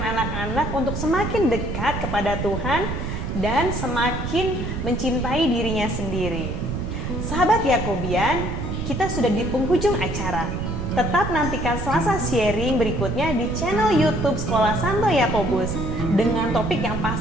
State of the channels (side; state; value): right; noise; rumble, 4 dB below the sound